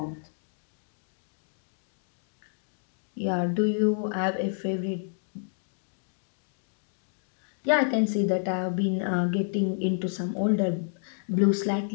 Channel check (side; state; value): right; silent; digital silence